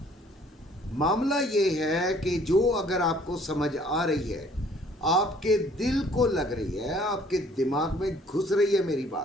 मामला ये है कि जो अगर आपको समझ आ रही है, आपके दिल को लग रही है, आपके दिमाग में घुस रही है मेरी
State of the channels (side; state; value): both; normal; correlation 0.58